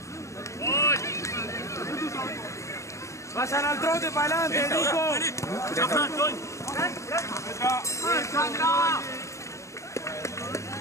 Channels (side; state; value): right; late; 0.15 ms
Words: Vayan al trote para adelante, Nico.